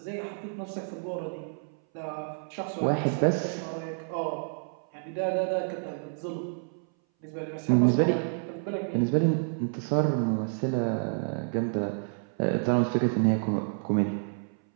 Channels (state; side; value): silent; left; 58 dB below the other